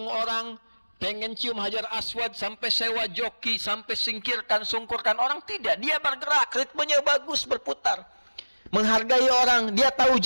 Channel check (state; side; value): inverted; both; correlation -1.00